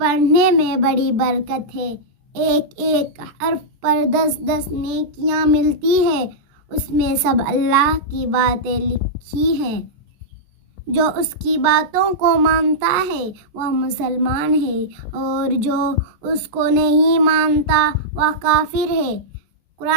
میں بڑی برکت ہے، ایک ایک حرف پر 10 نیکیاں ملتی ہے۔ اس میں سب اللہ کی باتیں لکھی ہیں۔ جو اس کی باتوں کو مانتا ہے وہ مسلمان ہے، اور جو اس کو نہیں مانتا وہ کافر ہے۔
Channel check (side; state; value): left; late; 14 ms